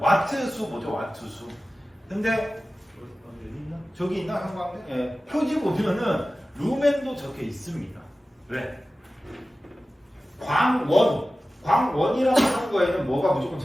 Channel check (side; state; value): both; normal; correlation 0.96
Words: 와트수 보죠, 와트수. 근데 저기 있나 형광등? 예. 표지 보면은 루멘도 적혀 있습니다. 왜? 광원이라고 하는 거에는 뭐가 무조건